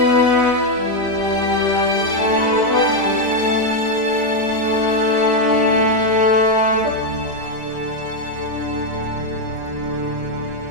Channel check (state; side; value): late; left; 4.9 ms